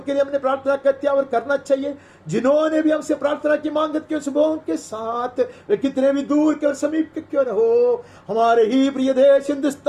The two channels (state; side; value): identical; both; correlation 1.00